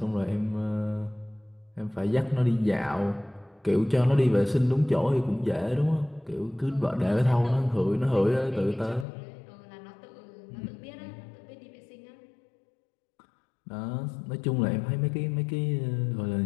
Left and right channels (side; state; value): right; drops out; at 9.1 s